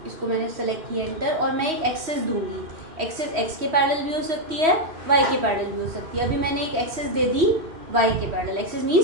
इसको मैंने सेलेक्ट किया एंटर, और मैं एक एक्सेस दूंगी। एक्सेस एक्स के पैरेलल भी हो सकती है, वाई के पैरेलल भी हो सकती है। अभी मैंने एक एक्सेस दे दी वाई के parallel. Axis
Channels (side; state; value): left; late; 3.1 ms